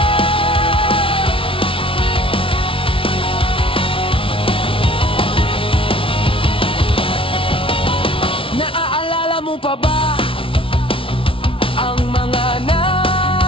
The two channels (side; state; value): right; late; 0.26 ms